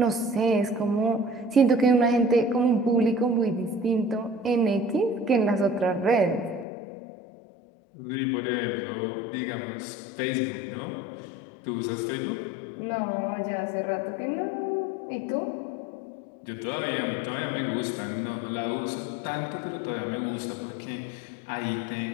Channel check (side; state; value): right; drops out; at 6.7 s